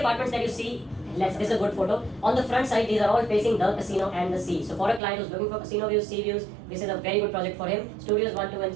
that you see, this is a good photo. On the front side, these are all facing the casino and the sea. So for a client who's looking for casino views, sea views, this is a very good project for him. Studios 1, 2 and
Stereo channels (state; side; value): drops out; left; at 5.0 s